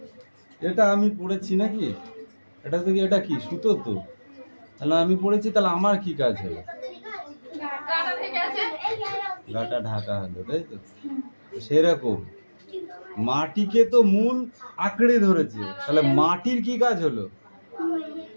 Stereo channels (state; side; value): inverted; both; correlation -1.00